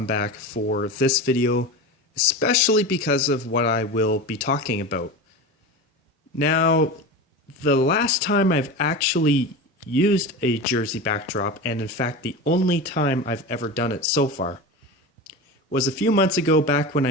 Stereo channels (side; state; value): both; normal; correlation 0.27